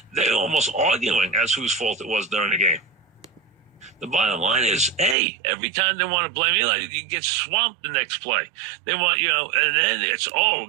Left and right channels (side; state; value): left; drops out; at 5.2 s